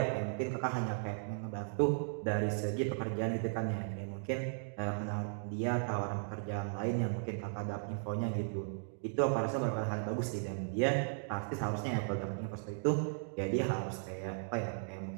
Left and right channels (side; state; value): left; silent; digital silence